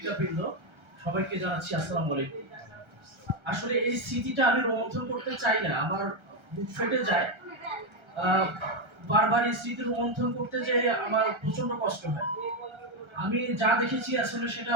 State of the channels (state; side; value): late; left; 1.3 ms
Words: সবাইকে জানাচ্ছি আসসালামু আলাইকুম। আসলে এই স্মৃতিটা আমি রোমন্থন করতে চাই না, আমার বুক ফেটে যায়। বারবার এই স্মৃতি রোমন্থন করতে যেয়ে আমার প্রচন্ড কষ্ট হয়। আমি যা দেখেছি আসলে সেটা